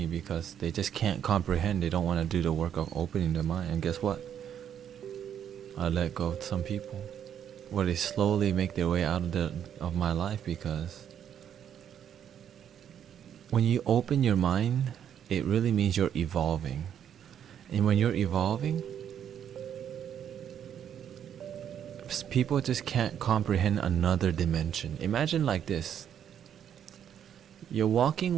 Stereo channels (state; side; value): quieter; left; 9.2 dB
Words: because they just can't comprehend. They don't want to do the work of opening their mind. And guess what? I let go of some people, where they slowly make their way out of my life, because when you open your mind, it really means you're evolving. And when you're evolving, people just can't comprehend another dimension. Imagine like this. You're